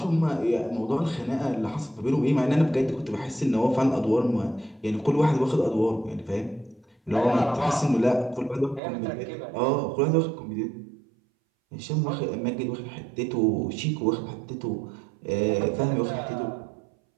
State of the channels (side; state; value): left; drops out; at 8.8 s